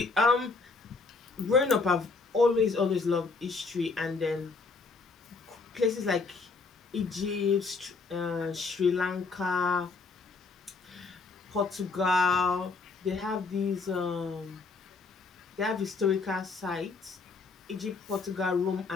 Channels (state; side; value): quieter; right; 4.3 dB